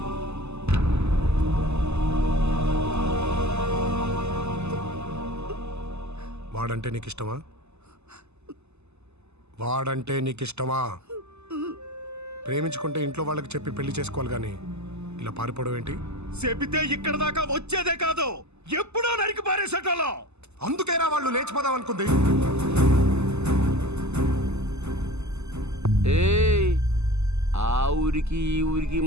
వాడంటే నీకు ఇష్టమా? వాడంటే నీకు ఇష్టమా? ప్రేమించుకుంటే ఇంట్లో వాళ్ళకి చెప్పి పెళ్లి చేసుకోవాలి కానీ ఇలా పారిపోవడం ఏంటి? చెబితే ఇక్కడ దాకా వచ్చేదే కాదు, ఎప్పుడో నరికి పారేసేటోళ్ళం. అందుకేరా వాళ్ళు లేచిపోదాం అనుకుంది. ఏయ్, ఆ ఊరికి ఈ ఊరికి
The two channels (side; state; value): left; late; 0.81 ms